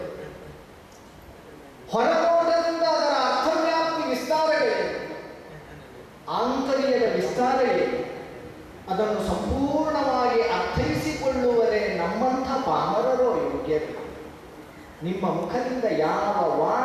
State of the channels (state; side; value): identical; both; correlation 1.00